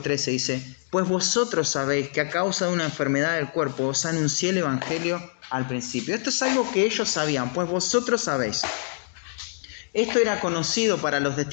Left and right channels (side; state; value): right; silent; digital silence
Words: 13 dice: pues vosotros sabéis que a causa de una enfermedad del cuerpo os anuncié el Evangelio al principio. Esto es algo que ellos sabían, pues vosotros sabéis. Esto era conocido para los